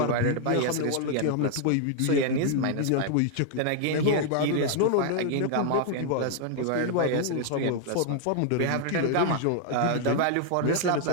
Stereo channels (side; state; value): both; different; correlation 0.00